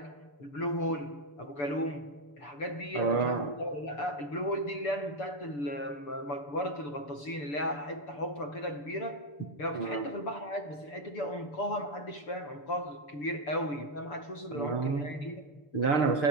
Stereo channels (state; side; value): late; right; 6.9 ms